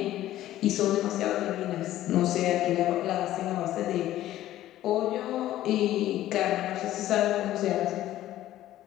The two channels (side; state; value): right; quieter; 13.8 dB